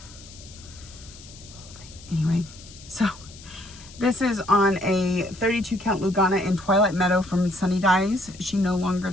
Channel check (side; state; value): left; noise; hiss, 19 dB below the sound